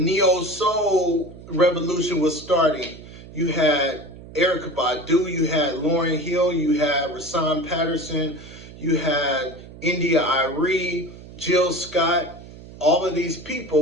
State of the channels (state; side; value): noise; right; hum, 17 dB below the sound